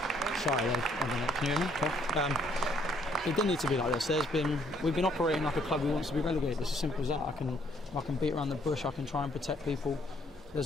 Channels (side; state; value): both; normal; correlation 0.66